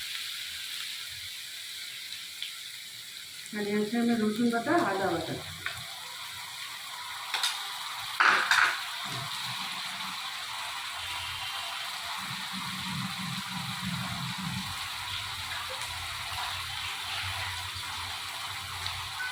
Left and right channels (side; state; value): both; identical; correlation 1.00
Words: এখানে আছে আমি রসুন বাটা, আদা বাটা।